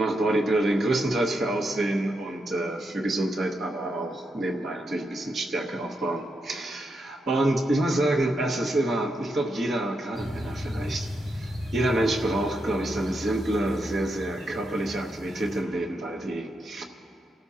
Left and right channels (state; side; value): normal; both; correlation 0.83